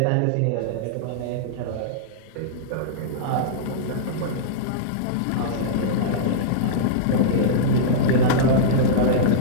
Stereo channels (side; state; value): both; different; correlation -0.03